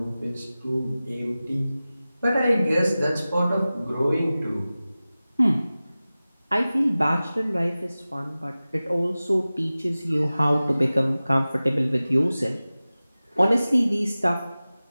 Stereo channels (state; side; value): inverted; both; correlation -0.97